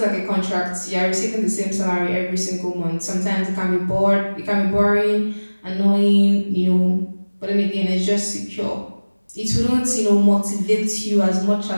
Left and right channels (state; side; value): inverted; both; correlation -1.00